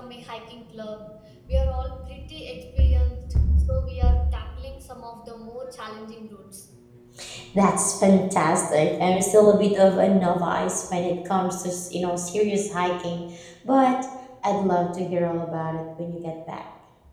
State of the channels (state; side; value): identical; both; correlation 1.00